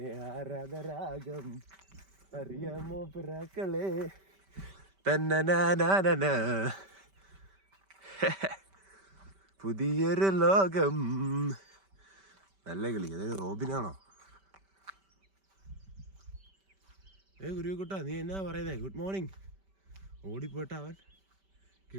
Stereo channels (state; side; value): late; left; 5.1 ms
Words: ആരാധരാഗം അറിയാമോ പിറാക്കളെ തന്നനാന പുതിയൊരു ലോകം. നല്ല കിളി. അതൊരു റോബിനാണോ? ഗുരുക്കുട്ടാ, നീ എന്നാ പറയുന്നേ? Good morning. ഓടിപ്പോട്ട അവൻ.